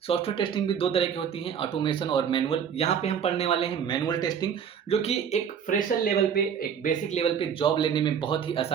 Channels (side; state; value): left; quieter; 7.7 dB